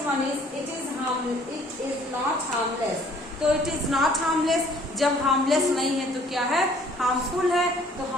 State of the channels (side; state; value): both; normal; correlation 0.57